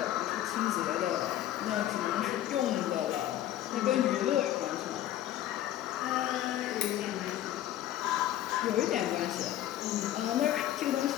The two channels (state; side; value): quieter; right; 12.7 dB